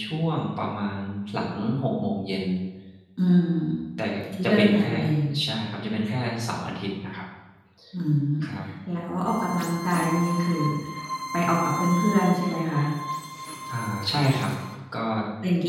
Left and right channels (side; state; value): both; identical; correlation 1.00